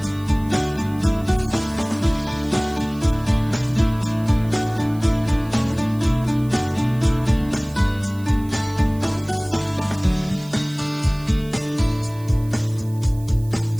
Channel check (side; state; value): right; noise; hiss, 23 dB below the sound